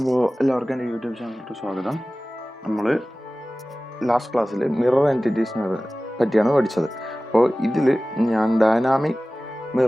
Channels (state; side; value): normal; both; correlation 0.97